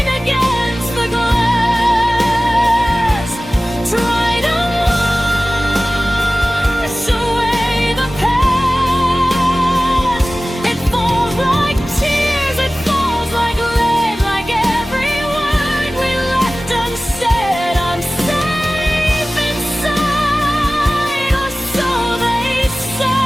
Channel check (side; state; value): both; normal; correlation 0.97